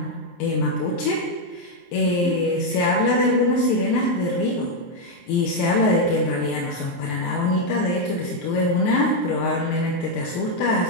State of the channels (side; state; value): right; late; 23 ms